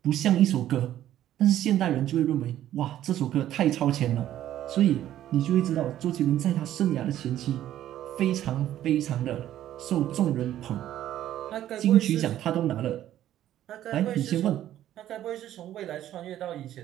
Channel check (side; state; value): left; quieter; 12.3 dB